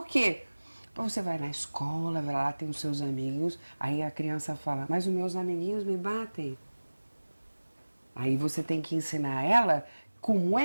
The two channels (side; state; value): both; inverted; correlation -1.00